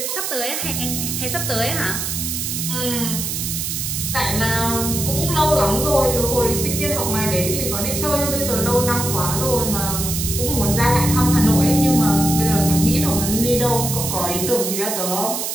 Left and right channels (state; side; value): noise; right; hiss, 3 dB below the sound